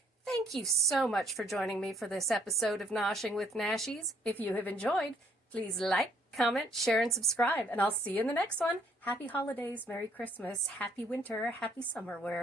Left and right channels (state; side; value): normal; both; correlation 0.65